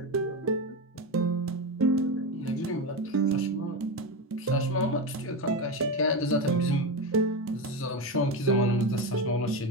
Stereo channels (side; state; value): both; normal; correlation 0.16